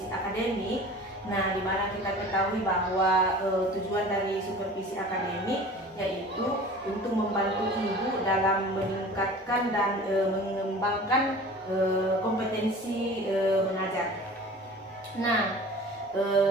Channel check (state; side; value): normal; both; correlation 0.41